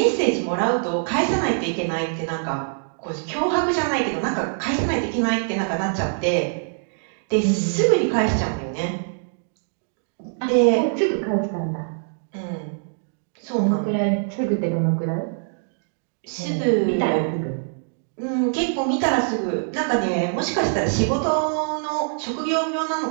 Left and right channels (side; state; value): left; silent; digital silence